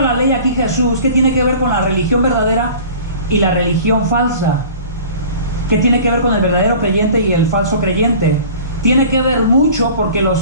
la ley aquí Jesús? ¿Qué tiene que ver con la religión verdadera y la religión falsa? ¿Qué tiene que ver con el verdadero creyente y el falso creyente? Tiene que ver mucho, porque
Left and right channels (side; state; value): both; inverted; correlation -0.43